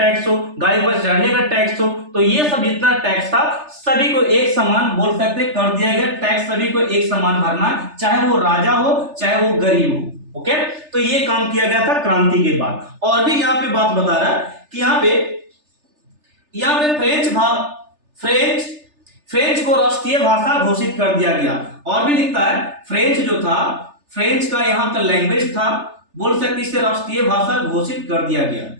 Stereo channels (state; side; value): late; left; 3.3 ms